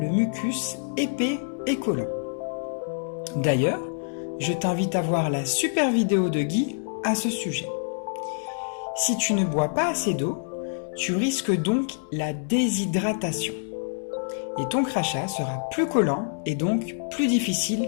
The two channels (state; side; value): silent; right; digital silence